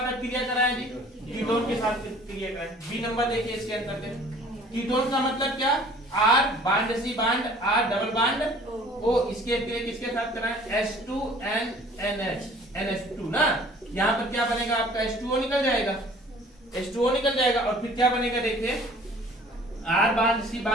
क्रिया कराएं जी, कीटोन के साथ क्रिया कराएं। बी नंबर देखिए इसके अंतर्गत कीटोन का मतलब क्या, R bond C bond R double bond O, इसके अतिरिक्त किसके साथ कराएं H2NNH ना, यहाँ पर क्या बनेगा आपका H2O निकल जाएगा, H2O निकल जाएगा और फिर क्या बनेगा देखिए R bond C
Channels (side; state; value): both; normal; correlation 0.52